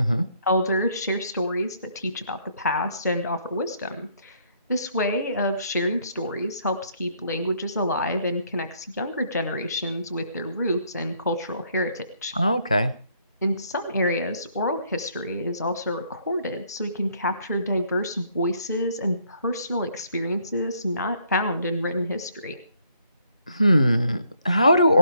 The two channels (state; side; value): inverted; both; correlation -0.68